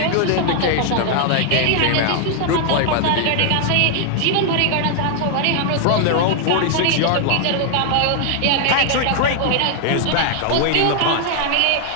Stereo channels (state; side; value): different; both; correlation 0.00